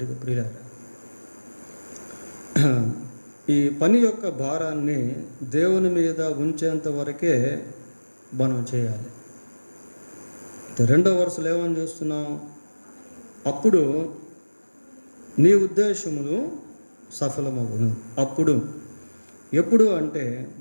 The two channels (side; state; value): both; inverted; correlation -1.00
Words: ప్రియులారా. ఈ పని యొక్క భారాన్ని దేవుని మీద ఉంచేంత వరకే మనం చేయాలి. రెండో వరుసలో ఏమని చూస్తున్నాం? అప్పుడు నీ ఉద్దేశములు సఫలమగును. అప్పుడు ఎప్పుడు అంటే